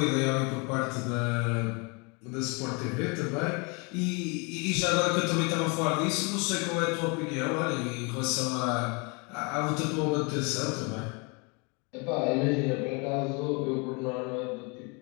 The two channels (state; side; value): quieter; right; 31.3 dB